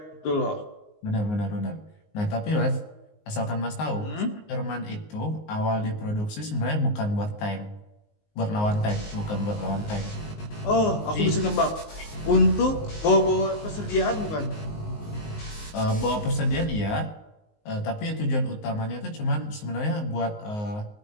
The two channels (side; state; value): right; late; 19 ms